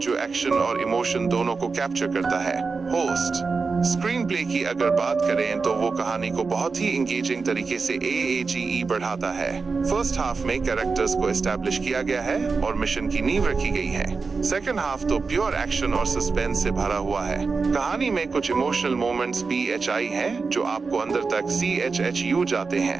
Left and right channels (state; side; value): quieter; left; 4.6 dB